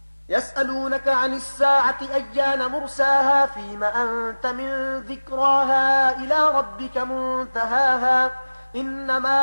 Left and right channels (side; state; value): both; inverted; correlation -1.00